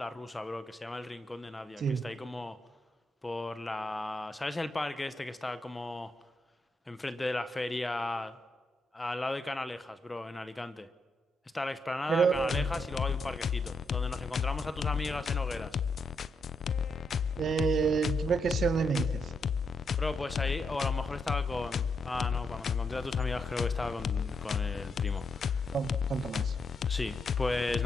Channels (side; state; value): both; normal; correlation 0.80